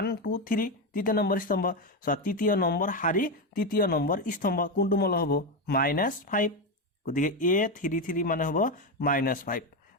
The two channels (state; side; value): normal; both; correlation 0.11